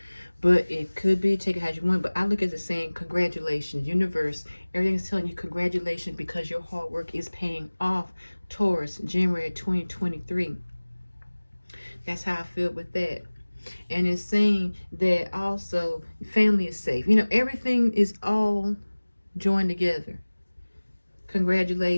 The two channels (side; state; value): both; inverted; correlation -1.00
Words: but it could be. Take it how you want. But I look at it saying, congratulations, universe. Everything's telling you congratulations because your hard work is paying off, Taurus, January 2023. That's how I feel with that. And it's saying that also family is safe. You know, everything is all joined together.